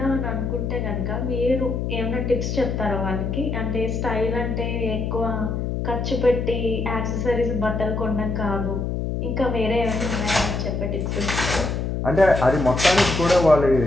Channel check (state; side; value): noise; left; hum, 2 dB below the sound